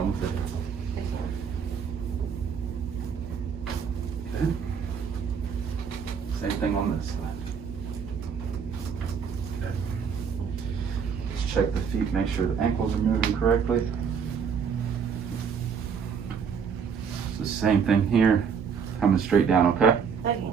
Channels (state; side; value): quieter; left; 6.7 dB